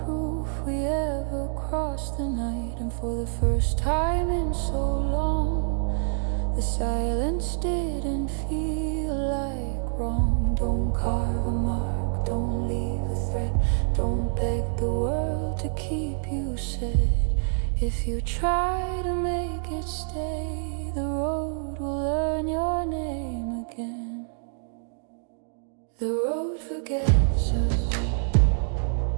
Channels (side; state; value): left; silent; digital silence